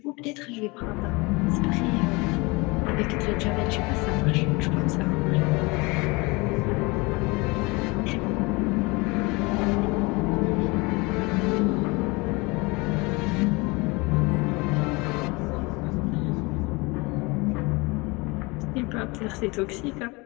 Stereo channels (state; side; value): quieter; right; 25.8 dB